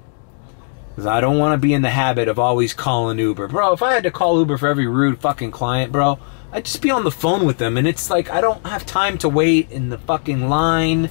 Because I don't want to be in the habit of always calling Uber. Bro, if I had to call Uber for every rude fucking client, bro, I'd just be on the phone with them. And it's like, I don't have time to wait in the fucking line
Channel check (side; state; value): right; silent; 66 dB below the other